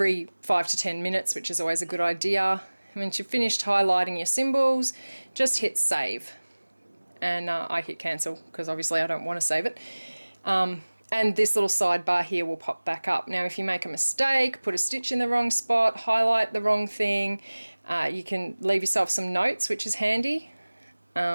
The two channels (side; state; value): both; inverted; correlation -1.00